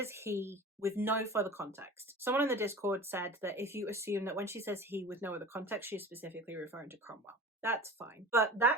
he with no further context. Someone in the Discord said that if you assume that when she says he with no other context, she's specifically referring to Cromwell. That's fine. But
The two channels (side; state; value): both; normal; correlation 0.37